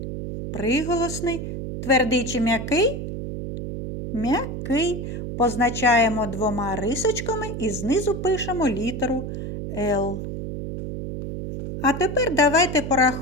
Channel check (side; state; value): right; noise; hum, 6 dB below the sound